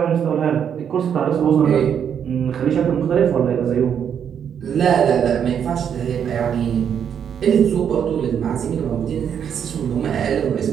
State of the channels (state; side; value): quieter; left; 8.2 dB